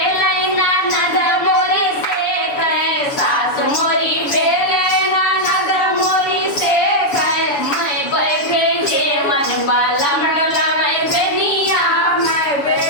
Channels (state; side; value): late; right; 7.0 ms